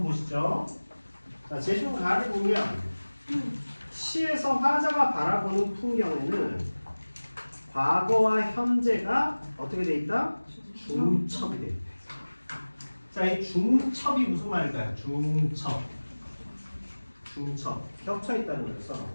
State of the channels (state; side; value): inverted; both; correlation -1.00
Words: 보시죠. 자, 제시문 가를 보면 시에서 화자가 바라보는 풍경에는 과거와 현재가 어떻게 돼 있다? 중첩이 돼 있다. 자, 이 중첩이 무슨 말일까요? 중첩. 중첩. 겹쳐 있다는